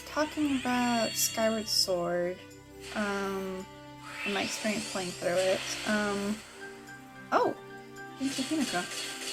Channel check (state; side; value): identical; both; correlation 1.00